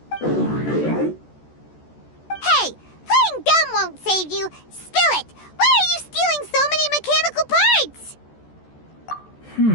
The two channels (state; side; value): late; right; 14 ms